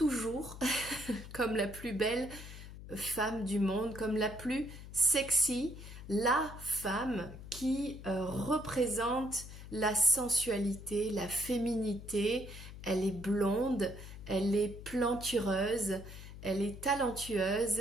comme la plus belle femme du monde, comme la plus sexy, la femme qui représente la sensualité, la féminité. Elle est blonde, elle est plantureuse, elle est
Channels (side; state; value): left; noise; hum, 13 dB below the sound